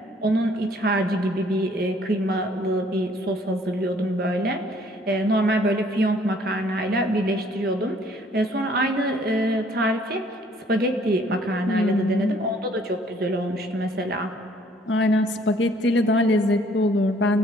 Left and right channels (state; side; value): normal; both; correlation 0.60